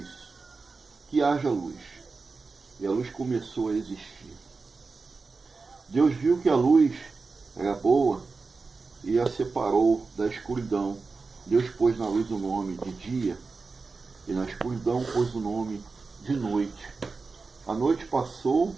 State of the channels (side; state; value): left; quieter; 4.2 dB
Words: que haja luz. E a luz começou a existir. Deus viu que a luz era boa e a separou da escuridão. Deus pôs na luz o nome de dia, e na escuridão pôs o nome de noite. A noite passou